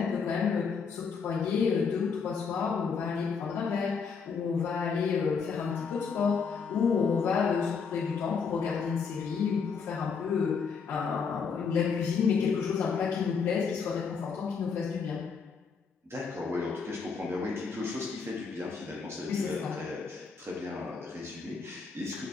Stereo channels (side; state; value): right; quieter; 5.6 dB